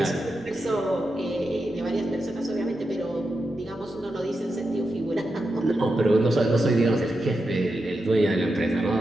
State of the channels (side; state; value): both; normal; correlation 0.88